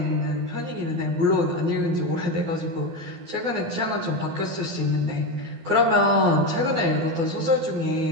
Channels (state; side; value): late; left; 12 ms